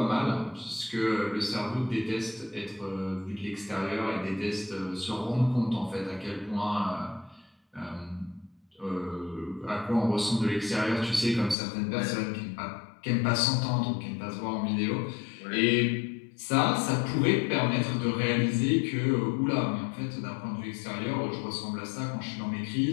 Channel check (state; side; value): drops out; right; at 11.6 s